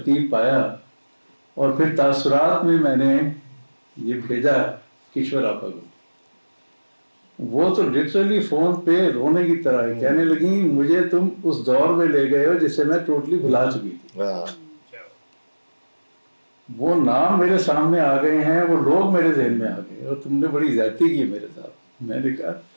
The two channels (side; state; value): both; inverted; correlation -1.00